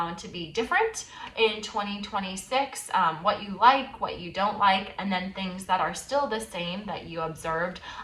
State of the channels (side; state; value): both; identical; correlation 1.00